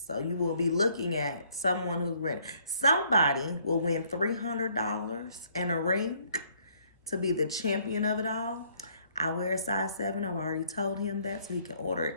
So you will be looking at someone who's ready. Somebody will win $300 and a ring to be the champion of it all. I wear a size 7. I've already told him that so he can order it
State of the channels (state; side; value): inverted; both; correlation -0.65